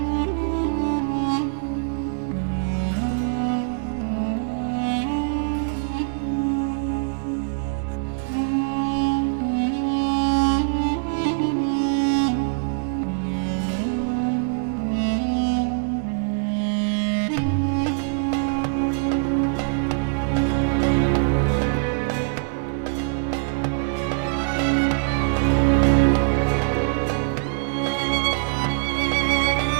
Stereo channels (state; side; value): silent; left; digital silence